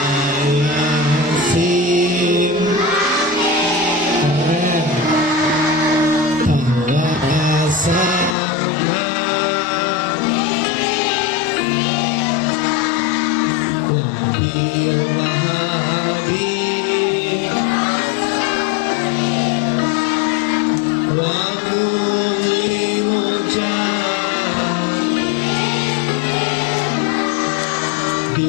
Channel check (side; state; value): right; drops out; at 8.3 s